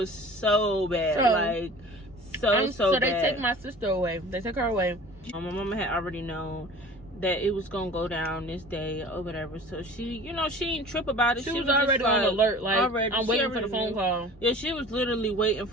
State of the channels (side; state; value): both; normal; correlation 0.43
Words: so bad. So bad. They take my sister away. They took her away. My mama had already known that it was going to go down this day or whatever. So she, you know, she didn't trip about it. She was already on alert. Like, I'm waiting for the phone knew. call. Yeah, she was literally waiting